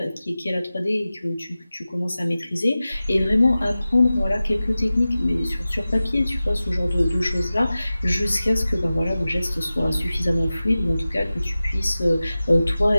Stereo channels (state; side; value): inverted; both; correlation -0.96